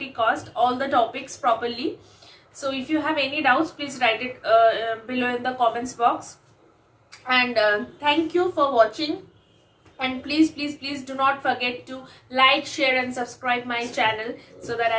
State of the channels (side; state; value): both; identical; correlation 1.00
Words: cost, all the topics properly. So if you have any doubts, please write it below in the comments box. And thank you for watching. And please do not forget to like, share and subscribe my channel so that